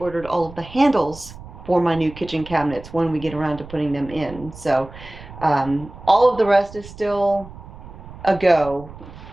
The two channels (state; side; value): noise; right; rumble, 16 dB below the sound